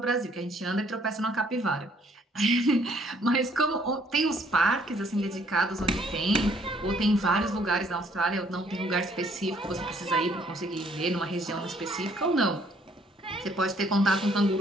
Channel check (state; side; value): normal; both; correlation 0.64